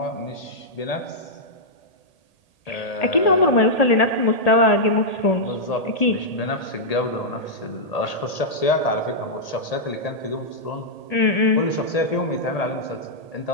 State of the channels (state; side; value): late; right; 1.8 ms